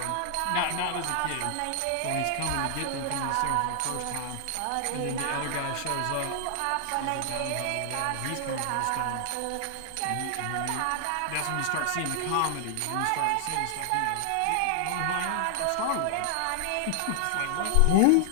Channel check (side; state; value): both; different; correlation 0.00